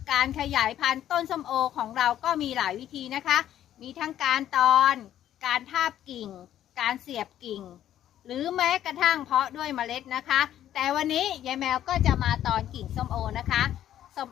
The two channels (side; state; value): right; quieter; 11.5 dB